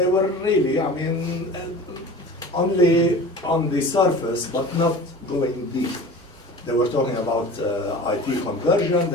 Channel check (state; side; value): normal; both; correlation 0.38